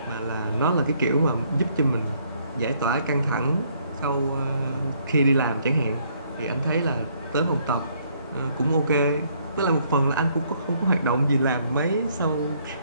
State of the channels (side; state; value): both; inverted; correlation -0.67